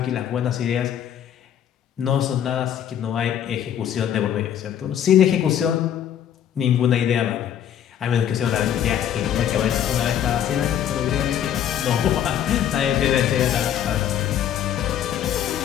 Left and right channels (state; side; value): quieter; right; 9.9 dB